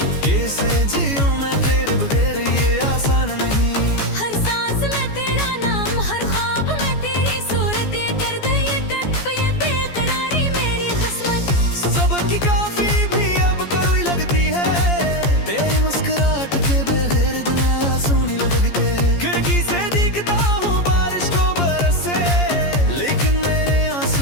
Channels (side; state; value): right; late; 14 ms